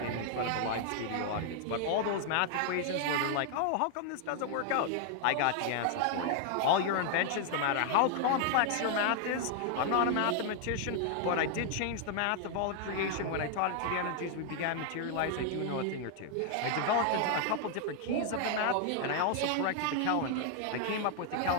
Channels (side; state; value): both; different; correlation 0.00